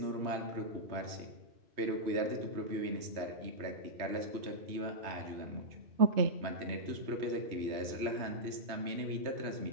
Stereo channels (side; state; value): left; late; 3.1 ms